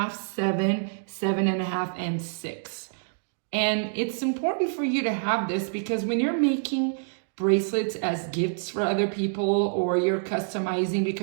7, 7.5, and 6. And it's important for you to have this because when you're making bracelets as gifts for other people or you're customizing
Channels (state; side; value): silent; left; digital silence